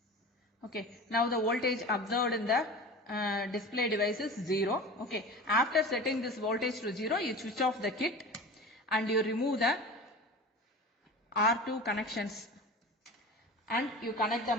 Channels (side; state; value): both; normal; correlation 0.34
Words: Okay, now the voltage observed in the display device is 0. Okay, after setting this voltage to 0, you switch off the kit and you remove the R2 connections and you connect the